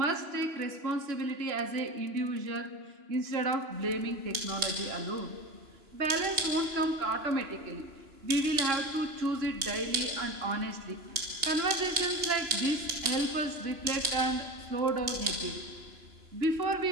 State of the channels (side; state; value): left; late; 3.0 ms